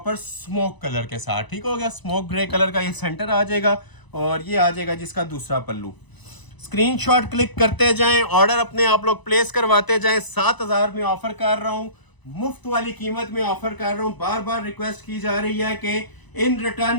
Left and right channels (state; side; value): late; right; 1.0 ms